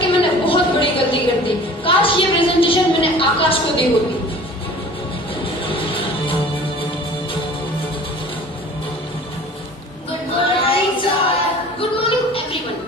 मैंने बहुत बड़ी गलती कर दी। काश ये प्रेजेंटेशन मैंने आकाश को दी होती। Good morning everyone.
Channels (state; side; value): normal; both; correlation 0.45